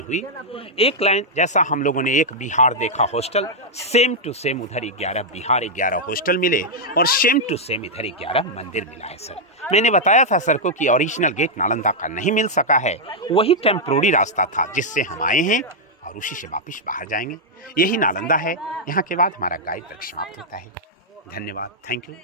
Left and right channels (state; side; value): normal; both; correlation -0.05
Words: हुई। एक लाइन जैसा हम लोगों ने एक बिहार देखा हॉस्टल, सेम टू सेम उधर 11 बिहार 11 हॉस्टल मिले और सेम टू सेम इधर 11 मंदिर मिला है सर। मैंने बताया था सर को कि ओरिजिनल गेट नालंदा का नहीं मिल सका है, वही टेम्पोररी रास्ता था जिससे हम आए हैं और उसी से वापिस बाहर जाएंगे। यही नालंदा है। यहाँ के बाद हमारा गाइड तक समाप्त होता है। धन्यवाद। थैंक यू।